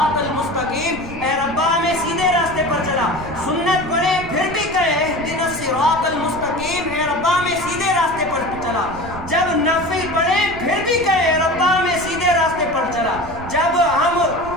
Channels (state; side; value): noise; right; rumble, 13 dB below the sound